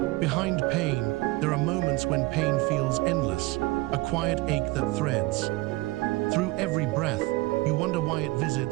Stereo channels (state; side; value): quieter; left; 21.2 dB